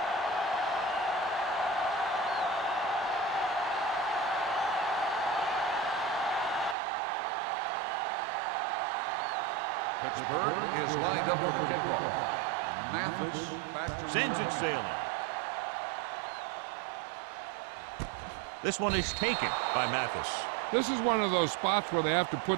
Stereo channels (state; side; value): drops out; left; at 6.8 s